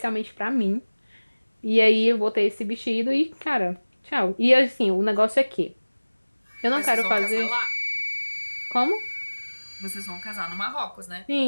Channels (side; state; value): both; inverted; correlation -1.00